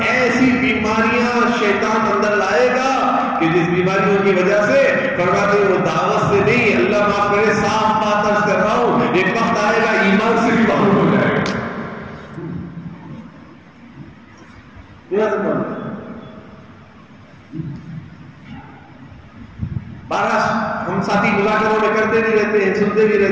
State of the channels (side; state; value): both; identical; correlation 1.00